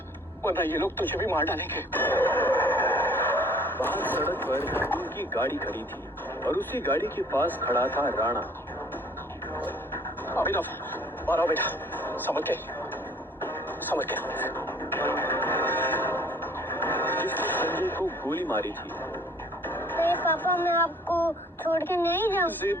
वरना ये लोग तुझे भी मार डालेंगे। बाहर सड़क पर उनकी गाड़ी खड़ी थी और उसी गाड़ी के पास खड़ा था राणा। अभिनव बाहर आओ बेटा, समझ के जिसने संजय को गोली मारी थी। अरे पापा मैं आपको छोड़ के नहीं जाऊँ। जिद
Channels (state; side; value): normal; both; correlation 0.55